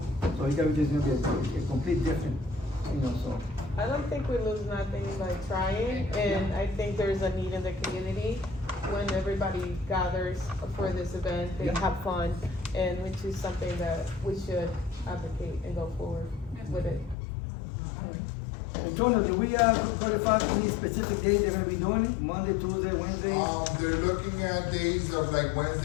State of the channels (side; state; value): right; drops out; at 17.2 s